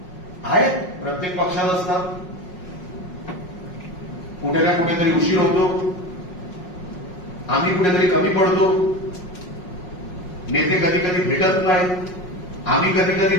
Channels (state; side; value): late; right; 5.5 ms